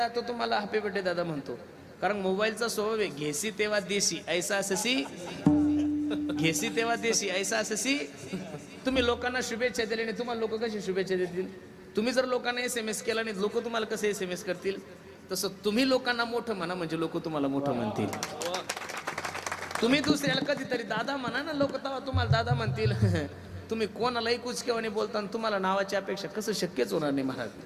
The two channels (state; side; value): identical; both; correlation 1.00